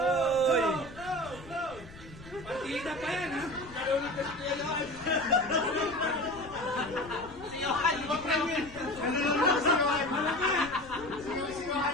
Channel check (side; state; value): left; noise; rumble, 17 dB below the sound